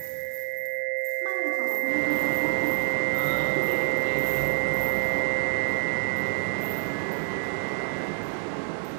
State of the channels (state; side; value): silent; left; 60 dB below the other